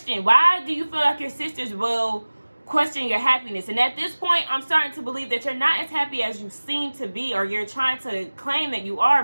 Why do you feel like your sisters will question your happiness? And at this point, I'm starting to believe that you're not as happy as you seem to be, or you're trying to claim that you are,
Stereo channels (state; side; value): inverted; both; correlation -1.00